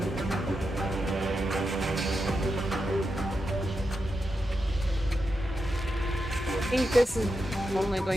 I think this is only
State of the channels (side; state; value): both; normal; correlation 0.87